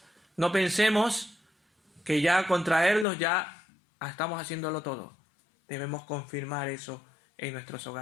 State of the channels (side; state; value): right; drops out; at 3.1 s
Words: No pensemos que ya con traerlos ya estamos haciéndolo todo. Debemos confirmar eso en nuestros